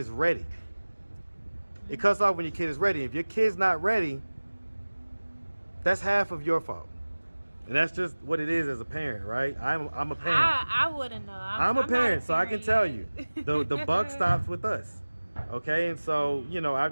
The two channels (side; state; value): both; inverted; correlation -1.00